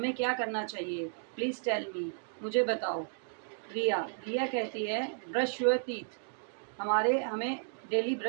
क्या करना चाहिए, प्लीज़ टेल मी, मुझे बताओ। रिया रिया कहती है ब्रश योर टीथ, हमें डेली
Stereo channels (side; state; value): left; silent; digital silence